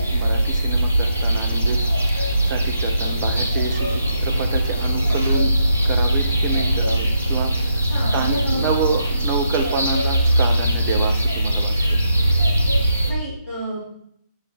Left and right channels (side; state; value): both; inverted; correlation -0.78